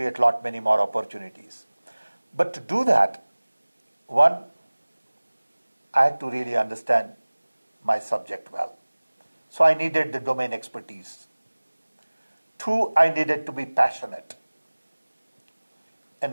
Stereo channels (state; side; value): inverted; both; correlation -1.00